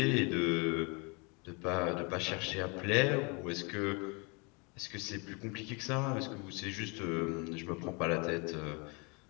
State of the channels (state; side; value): quieter; right; 31.3 dB